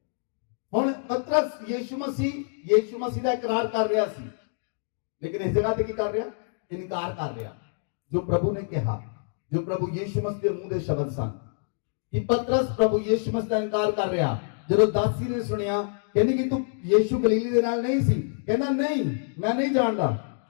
ਹੁਣ ਪਤਰਸ ਯੀਸ਼ੂ ਮਸੀਹ ਦਾ ਇਕਰਾਰ ਕਰ ਰਿਹਾ ਸੀ, ਲੇਕਿਨ ਇਸ ਜਗ੍ਹਾ ਤੇ ਕੀ ਕਰ ਰਿਹਾ? ਇਨਕਾਰ ਕਰ ਰਿਹਾ। ਜੋ ਪ੍ਰਭੂ ਨੇ ਕਿਹਾ, ਜੋ ਪ੍ਰਭੂ ਯੀਸ਼ੂ ਮਸੀਹ ਦੇ ਮੂੰਹ ਦੇ ਸ਼ਬਦ ਸਨ, ਕਿ ਪਤਰਸ ਪ੍ਰਭੂ ਯੀਸ਼ੂ ਮਸੀਹ ਦਾ ਇਨਕਾਰ ਕਰ ਰਿਹਾ। ਜਦੋਂ ਦਾਸੀ ਨੇ ਸੁਣਿਆ, ਕਹਿੰਦੀ ਕਿ ਤੂੰ ਯੀਸ਼ੂ ਗਲੀਲੀ ਦੇ ਨਾਲ ਨਹੀਂ ਸੀ, ਕਹਿੰਦਾ ਨਹੀਂ, ਮੈਂ ਨਹੀਂ ਜਾਣਦਾ।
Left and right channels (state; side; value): silent; right; digital silence